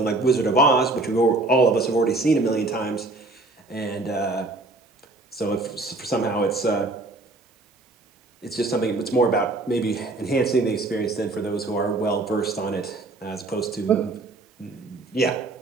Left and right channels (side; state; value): left; quieter; 3.1 dB